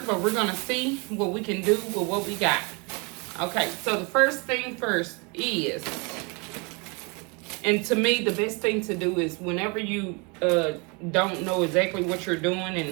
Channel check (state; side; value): quieter; left; 30.9 dB